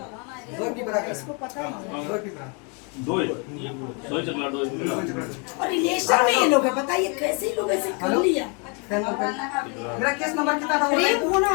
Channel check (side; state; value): right; quieter; 34.6 dB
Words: इसको पता है दो ही चकला दो और रिलेशन में ये लोग है, बताइए कैसे ही लोग ऐसे कर लिया। मेरा केस नंबर कितना था? प्रेम होना